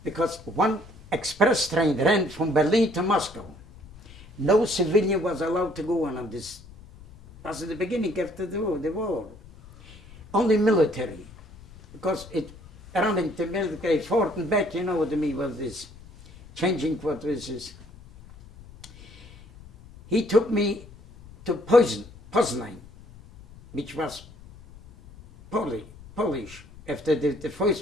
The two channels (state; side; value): noise; left; rumble, 20 dB below the sound